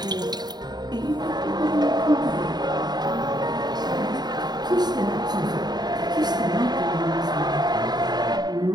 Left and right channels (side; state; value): left; late; 0.20 ms